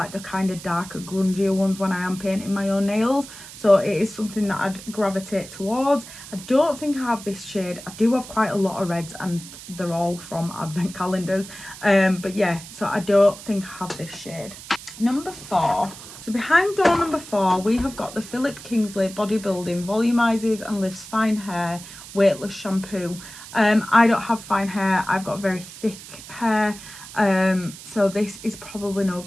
the kind of darker, grungier ones when I am painting my own nails, so it is something that I'd gravitate towards. I don't think I have this shade. I do have quite a lot of reds, and they're all from advent calendars, but yeah, so I don't think I have this shade. Number 4. So behind door number 4, we have got the Philip Kingsley Bodybuilding Volumizes and Lifts Fine Hair Weightless Shampoo. I don't have fine hair, I've got very thick hair, so this is probably no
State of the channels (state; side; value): noise; right; hiss, 15 dB below the sound